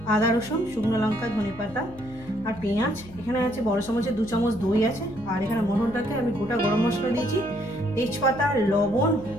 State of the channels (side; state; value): left; noise; hum, 19 dB below the sound